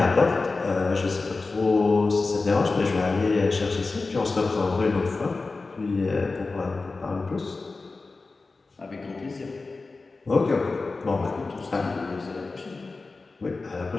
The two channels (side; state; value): right; quieter; 3.8 dB